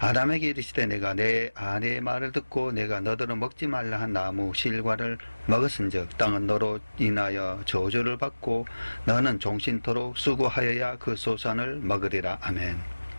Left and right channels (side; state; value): both; inverted; correlation -1.00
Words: 이르시되 내가 내 아내의 말을 듣고 내가 너더러 먹지 말라 한 나무 실과를 먹었은즉 땅은 너로 인하여 저주를 받고 너는 종신토록 수고하여야 그 소산을 먹으리라. 아멘.